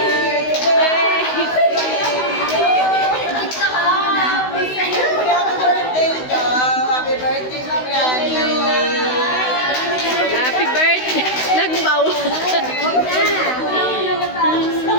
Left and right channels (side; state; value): right; late; 16 ms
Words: Happy birthday, Mami. Happy birthday! Nagbaw!